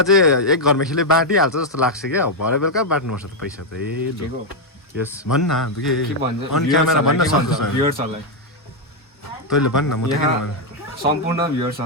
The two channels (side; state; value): both; normal; correlation 0.00